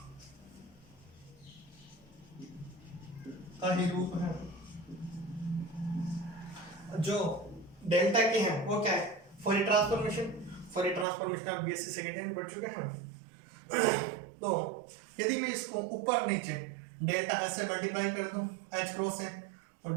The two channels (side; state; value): left; drops out; at 11.1 s